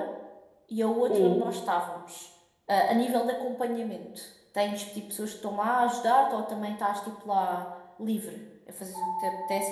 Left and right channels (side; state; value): both; identical; correlation 1.00